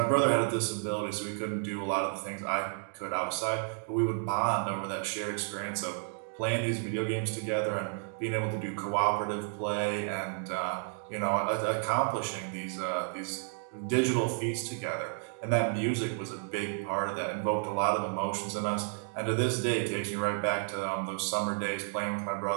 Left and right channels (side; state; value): left; silent; 57 dB below the other